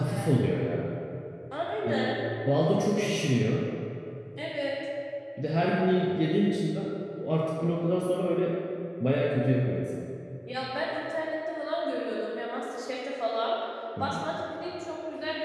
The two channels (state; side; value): identical; both; correlation 1.00